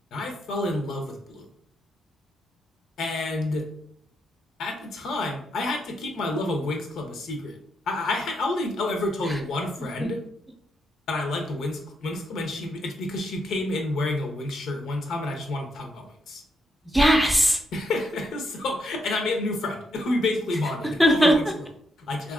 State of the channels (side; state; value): both; normal; correlation 0.79